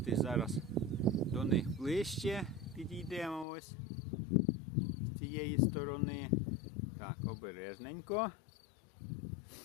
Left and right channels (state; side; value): drops out; right; at 3.5 s